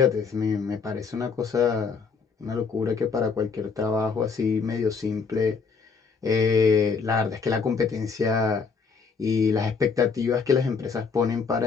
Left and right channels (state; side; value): quieter; right; 5.3 dB